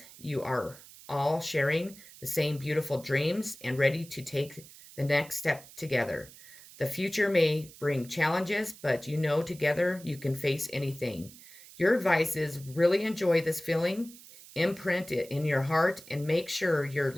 You are all sharing the same beautiful dreams and ready to take the next step together. The future may bring challenges, but you know together you can face anything. Your advice is really enjoy this feeling, imprint it in your heart, and make sure your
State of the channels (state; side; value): noise; right; hiss, 19 dB below the sound